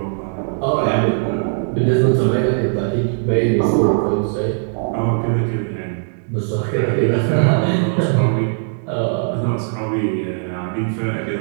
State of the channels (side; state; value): left; silent; digital silence